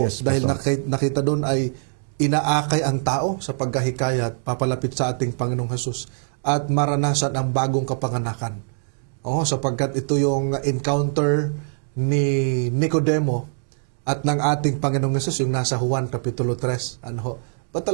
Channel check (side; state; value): left; silent; digital silence